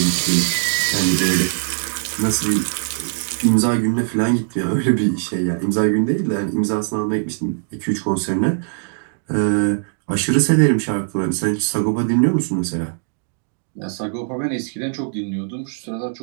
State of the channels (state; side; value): silent; left; digital silence